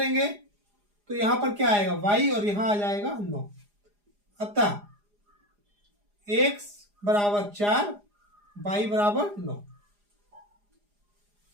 तो यहां पर क्या आएगा? y, और यहां आ जाएगा 9। अतः x बराबर 4, y बराबर 9।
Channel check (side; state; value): left; late; 4.9 ms